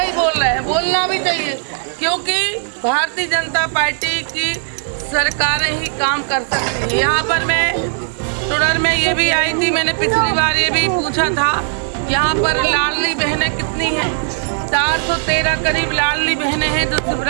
बोल रहे हैं, बोलना भी चाहिए, क्योंकि भारतीय जनता पार्टी की सरकारें ही काम कर सकती है। यहाँ पर मैं टुडर में ये भी आई थी, मैंने पिछली बार ये भी पूछा था यहाँ पर लाडली बहनें कितनी हैं। 413 करीब लाडली बहनें हैं जो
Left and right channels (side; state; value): left; silent; 66 dB below the other